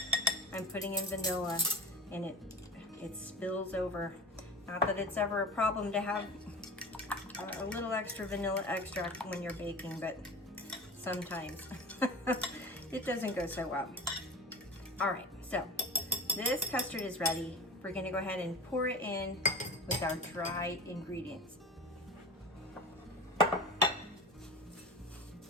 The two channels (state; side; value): normal; both; correlation 0.33